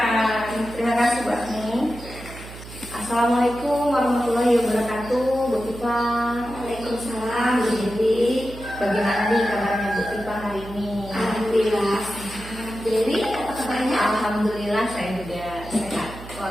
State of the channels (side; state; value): right; noise; hum, 14 dB below the sound